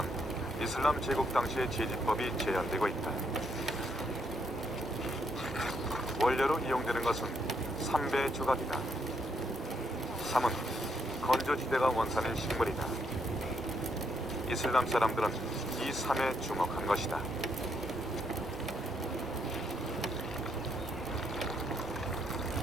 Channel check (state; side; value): normal; both; correlation 0.75